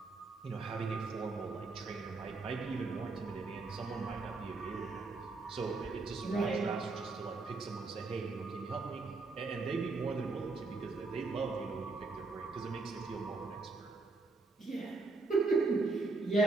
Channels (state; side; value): quieter; left; 3.7 dB